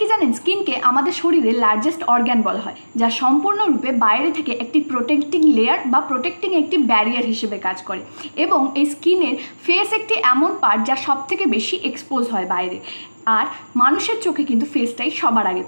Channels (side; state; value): both; inverted; correlation -1.00